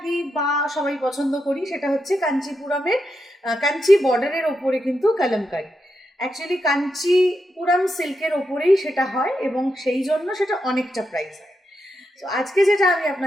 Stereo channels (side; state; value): both; normal; correlation 0.85